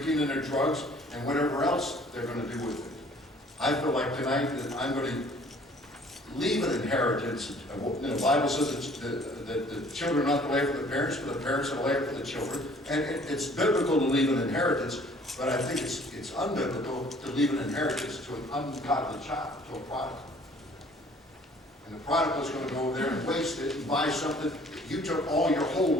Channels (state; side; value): normal; both; correlation 0.55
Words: and their drugs and whatever else they're going to do with it. I feel like tonight that I'm going to leave an inheritance. The Bible says that the children are not to lay for the parents, but the parents are to lay for the children. And it's biblical to leave an inheritance, but I think it's unbiblical to leave an inheritance to an ungodly child, to a prodigal. And the prodigal is going to go over there and waste it and buy something that you took all your whole